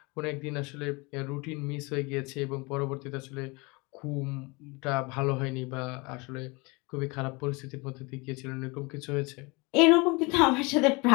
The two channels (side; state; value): right; quieter; 27.2 dB